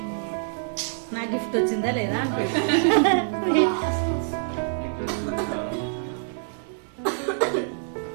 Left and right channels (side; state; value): left; silent; digital silence